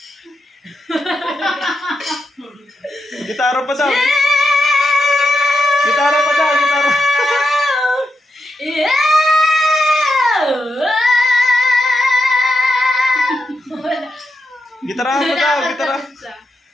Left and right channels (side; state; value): both; normal; correlation 0.85